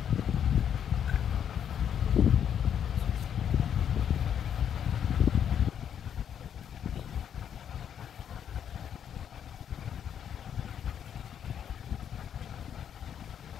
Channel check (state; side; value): quieter; right; 8.8 dB